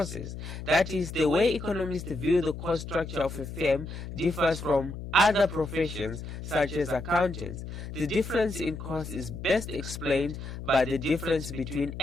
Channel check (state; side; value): noise; left; hum, 9 dB below the sound